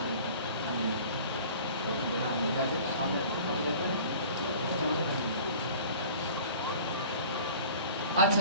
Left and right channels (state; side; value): inverted; both; correlation -0.45